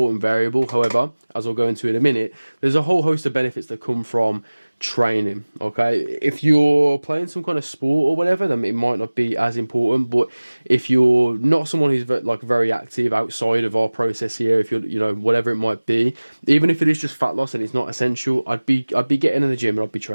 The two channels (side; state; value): both; inverted; correlation -1.00